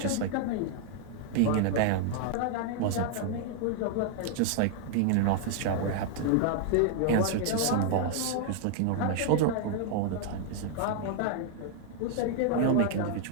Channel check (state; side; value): different; both; correlation 0.00